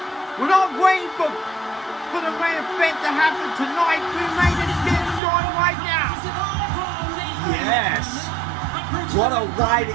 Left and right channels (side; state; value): left; drops out; at 5.2 s